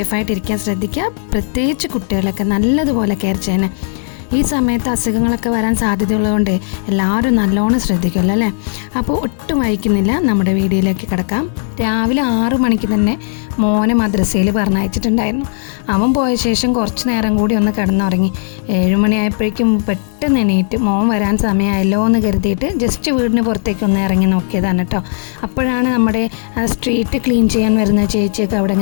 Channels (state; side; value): silent; right; 63 dB below the other